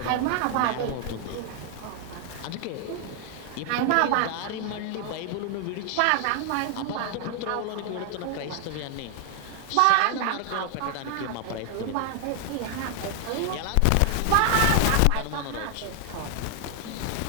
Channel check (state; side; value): different; both; correlation 0.00